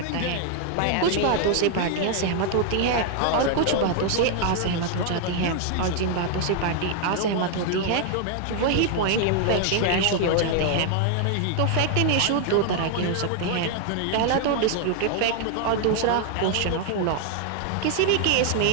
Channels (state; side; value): different; both; correlation 0.00